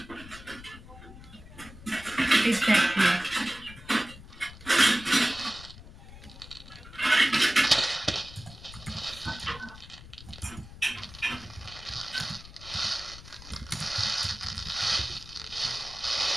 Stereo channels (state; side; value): noise; left; rumble, 17 dB below the sound